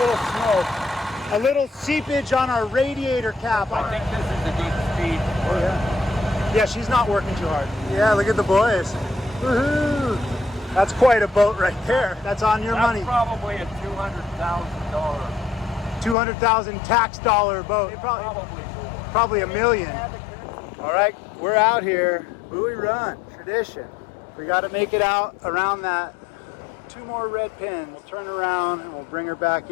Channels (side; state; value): right; drops out; at 16.2 s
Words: smoke. A little seepage on our radiator cap. I think this is a good speed. Oh, yeah. Yeah, she's not working too hard. Yeah, look at the boys. Woohoo! That's quite a boat right there. That's on your money. Probably a $200,000. 200,000 tax dollar boat. Probably more. Probably $1 million. All right, we're out here. Buoy Run, tradition. We got to make it out around that 2 more red pins. We'll turn around and we'll bring her back